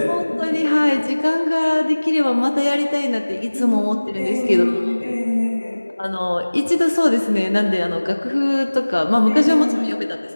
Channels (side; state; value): both; inverted; correlation -1.00